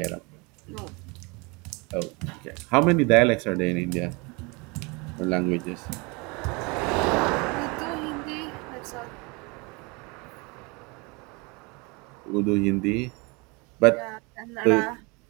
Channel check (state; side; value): quieter; left; 28.4 dB